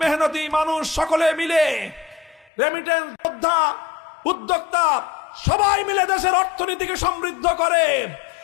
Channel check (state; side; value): drops out; right; at 2.5 s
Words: মেহনতি মানুষ সকলে মিলে, রেমিটেন্স যোদ্ধা, উদ্যোক্তা সবাই মিলে দেশের অর্থনীতিকে সমৃদ্ধ করে।